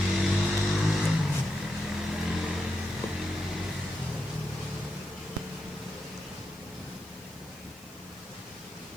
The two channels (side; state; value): left; noise; hiss, 24 dB below the sound